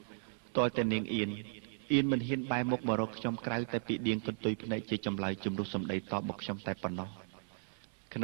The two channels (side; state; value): left; silent; 54 dB below the other